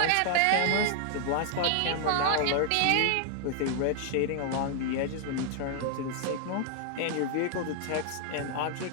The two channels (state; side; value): different; both; correlation 0.00